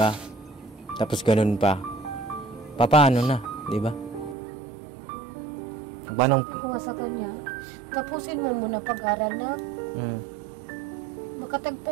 Tapos ganun pa. Paano na, 'di ba? Paano? Kung sa kanya, tapusin mo muna pag-aral na.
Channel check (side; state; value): left; drops out; at 4.4 s